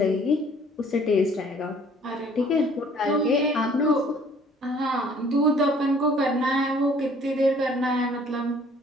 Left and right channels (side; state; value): both; normal; correlation 0.56